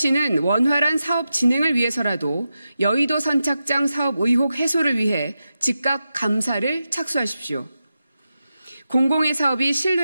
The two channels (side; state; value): both; inverted; correlation -0.90